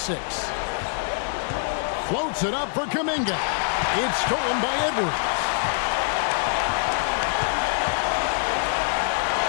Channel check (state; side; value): silent; right; digital silence